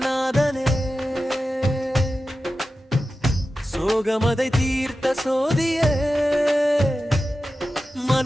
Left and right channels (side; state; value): both; normal; correlation 0.93